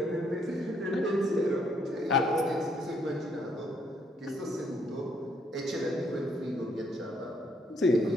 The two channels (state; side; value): normal; both; correlation 0.70